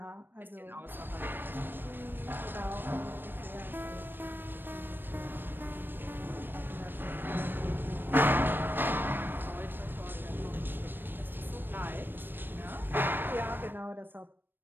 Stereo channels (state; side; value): late; left; 0.096 ms